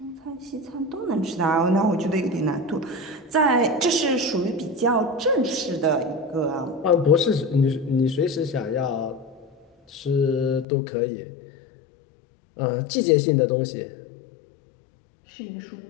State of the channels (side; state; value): right; drops out; at 10.7 s